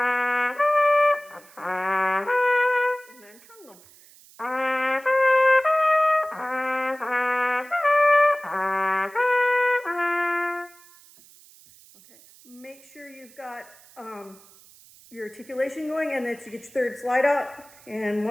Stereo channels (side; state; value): right; noise; hiss, 25 dB below the sound